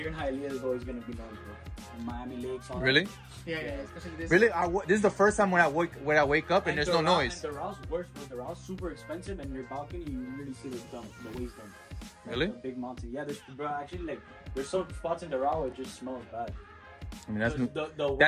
in Hialeah is always gonna be noise, bro. In Miami Lakes. Really? Yeah, especially this. Really? This is the first time when I wake up and there's no noise. And the Rouse worse, but the Rouse super expensive, and your balcony you really see the waste dump. Really? The big mountain. Yeah, there's some spots in the Doral where it just smells bad. I mean,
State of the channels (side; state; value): both; identical; correlation 1.00